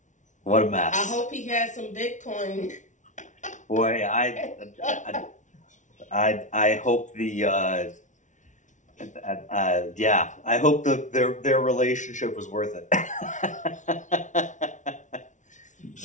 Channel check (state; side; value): late; right; 0.36 ms